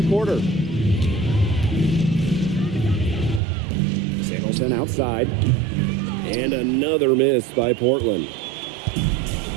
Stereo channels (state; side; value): drops out; left; at 3.4 s